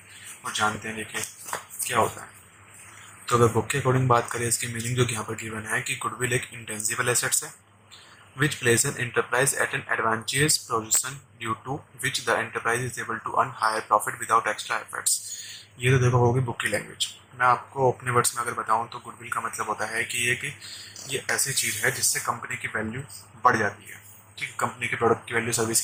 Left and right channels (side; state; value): both; identical; correlation 1.00